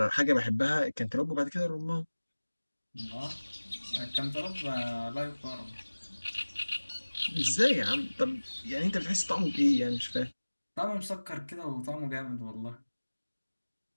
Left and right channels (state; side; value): inverted; both; correlation -1.00